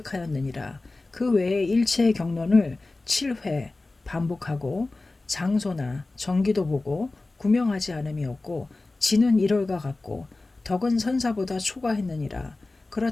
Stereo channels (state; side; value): quieter; right; 3.2 dB